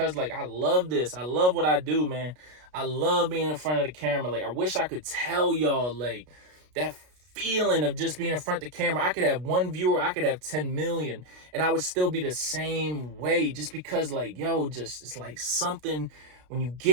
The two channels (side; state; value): left; late; 33 ms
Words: like I love this. I love what I do, man. I love being in front of the camera. Like I wish I could tell y'all like that feeling of just being in front of the camera. I could have one viewer, I could have 10 million, and I would still be the same way, just because like, just it's like something when you